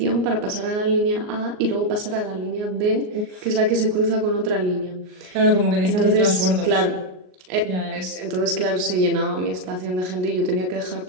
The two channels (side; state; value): left; late; 38 ms